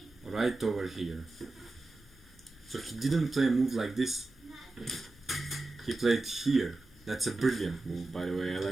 Right over here. So he didn't play a move like this. He played here. That's a brilliant move, by the way. I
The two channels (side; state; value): left; quieter; 3.1 dB